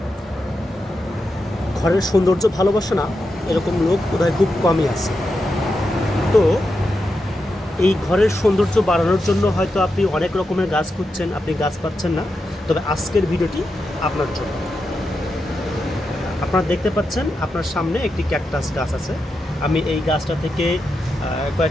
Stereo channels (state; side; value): normal; both; correlation 0.87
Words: ঘরের সৌন্দর্য ভালোবাসে না এরকম লোক বোধহয় খুব কমই আছে। তো এই ঘরের সৌন্দর্য বাড়ানোর জন্য হয়তো আপনি অনেক রকমের গাছ খুঁজছেন, আপনি গাছ পাচ্ছেন না। তবে আজকের ভিডিওটি আপনার জন্য। আপনারা দেখতে পাচ্ছেন আপনার সামনে একটি ক্যাকটাস গাছ আছে। আমি এই গাছটা থেকে